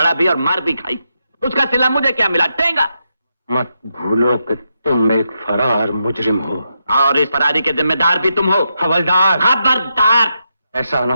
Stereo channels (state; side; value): inverted; both; correlation -0.83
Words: भी और मार भी खाई। उसका सिला मुझे क्या मिला? टेंगा। मत भूलो कि तुम एक फरार मुजरिम हो और इस फरारी के जिम्मेदार भी तुम हो। हवलदार। खबरदार! ऐसा ना